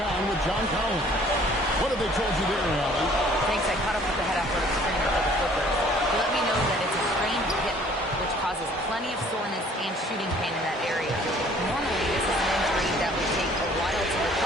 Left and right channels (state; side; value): normal; both; correlation 0.56